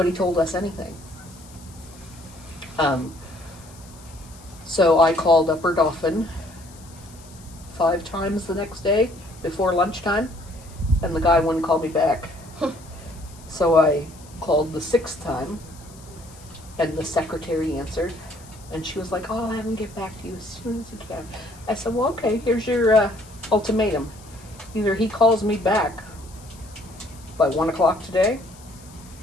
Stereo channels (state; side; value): noise; left; hiss, 23 dB below the sound